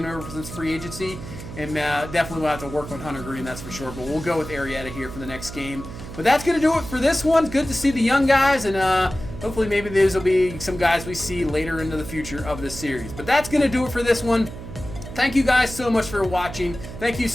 him over since free agency. And definitely we'll have to work on Hunter Green, that's for sure. But we'll go with Arrieta here for the next game. But that's going to do it for this one. Good to see the young guys. And hopefully maybe these will be some guys we see later into the future of this series. But that's going to do it for this one. Thank you guys so much for watching. Thank you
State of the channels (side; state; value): right; noise; hum, 11 dB below the sound